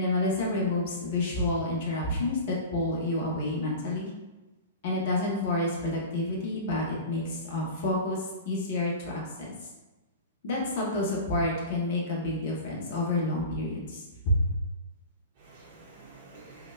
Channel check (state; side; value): inverted; both; correlation -0.32